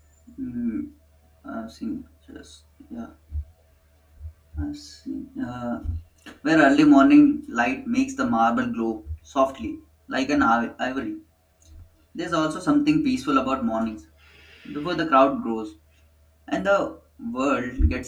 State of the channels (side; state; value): both; identical; correlation 1.00